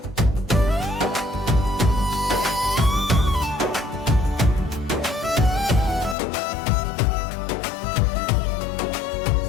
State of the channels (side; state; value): right; drops out; at 6.2 s